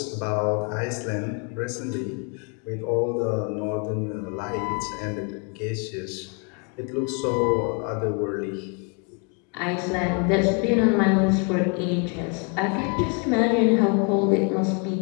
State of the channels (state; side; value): quieter; right; 35.6 dB